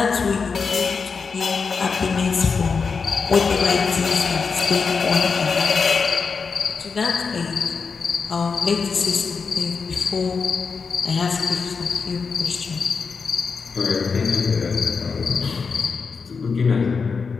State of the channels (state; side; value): quieter; right; 5.2 dB